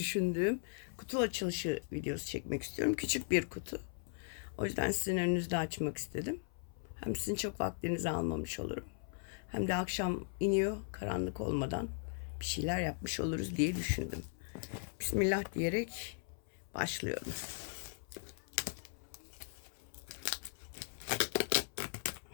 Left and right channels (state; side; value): silent; right; 52 dB below the other